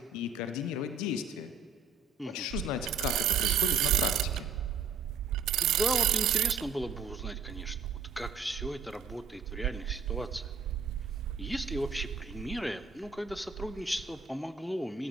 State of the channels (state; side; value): quieter; left; 5.0 dB